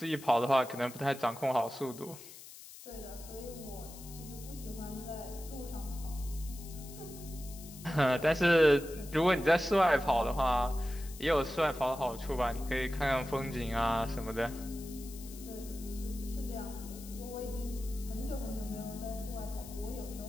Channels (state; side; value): noise; left; hiss, 16 dB below the sound